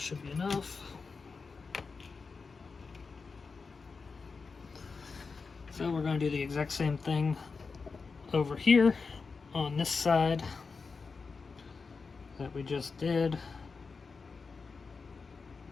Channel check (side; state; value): right; quieter; 4.7 dB